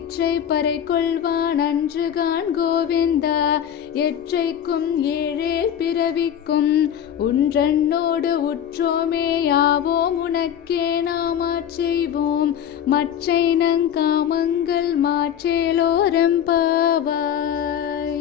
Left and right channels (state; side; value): quieter; right; 9.5 dB